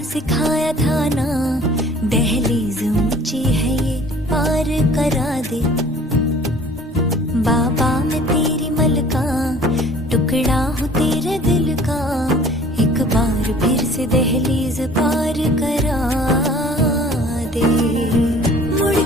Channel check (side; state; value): both; normal; correlation 0.50